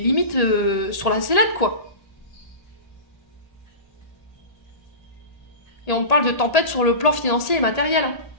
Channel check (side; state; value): right; late; 1.8 ms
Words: sur la sellette, quoi. Et on parle de tempête sur le plan financier et matériel. Hein.